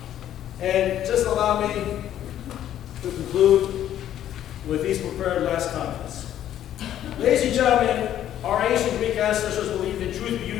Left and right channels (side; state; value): right; quieter; 11.4 dB